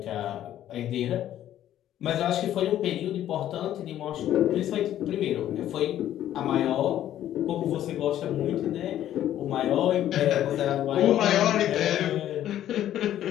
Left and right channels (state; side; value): quieter; right; 11.9 dB